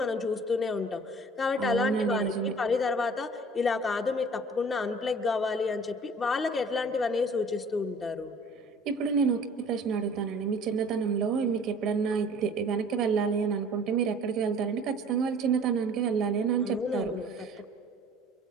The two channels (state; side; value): normal; both; correlation 0.49